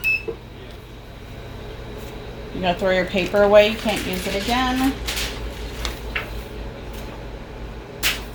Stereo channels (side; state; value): both; identical; correlation 1.00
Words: You gotta throw your paper away, you can't use it again.